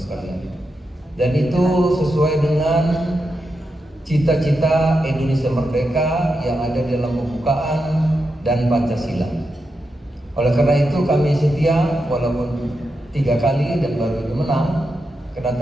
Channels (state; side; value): normal; both; correlation 0.87